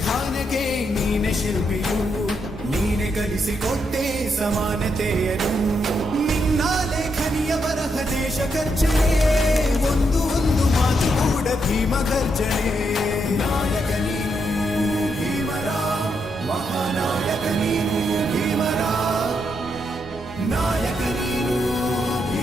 ನೀನೆ ಶಿಲ್ಪಿಯು, ನೀನೆ ಕಲಿಸಿಕೊಟ್ಟೆ ಸಮಾನತೆಯನು. ನಿನ್ನ ಲೇಖನಿಯ ಬರಹ ದೇಶ ಖರ್ಚನೆ, ಒಂದು ಒಂದು ಮಾತು ಕೂಡ ಭೀಮ ಗರ್ಜನೆ. ನಾಯಕ ನೀನು ಭೀಮರ, ಮಹಾನಾಯಕ ನೀನು ಭೀಮರ, ನಾಯಕ ನೀನು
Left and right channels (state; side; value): normal; both; correlation 0.80